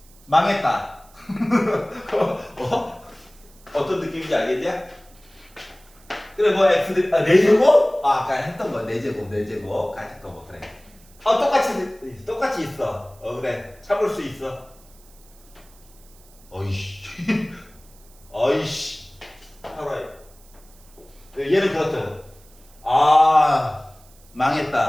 망했다. 어떤 느낌인지 알겠냐? 그래, 뭐 x 4제곱? 아까 했던 거 4제곱 같은 거 뭐 그래. 똑같이 있어. 그래, 참을 수 있어. 어이씨 살아요. 얘는 그렇다.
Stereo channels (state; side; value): noise; right; hiss, 27 dB below the sound